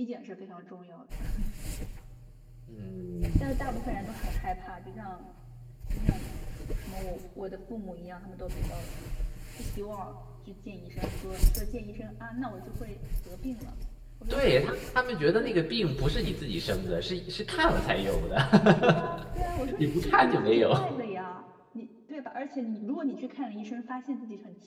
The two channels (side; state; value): both; identical; correlation 1.00